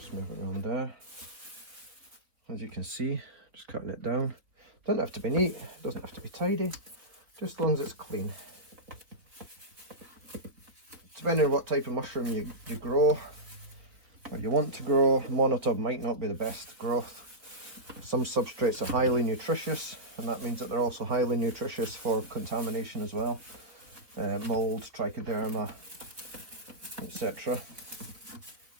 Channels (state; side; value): late; left; 3.8 ms